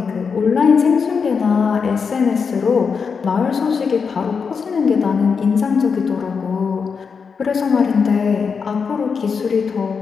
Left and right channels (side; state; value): right; quieter; 5.7 dB